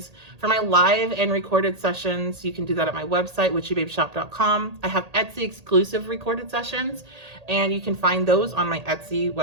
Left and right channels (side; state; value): left; late; 1.8 ms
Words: For my live and recorded sessions, you can do that at my website, witchybabeshop.com. I have Etsy exclusive recorded sessions, and you can find those on my Etsy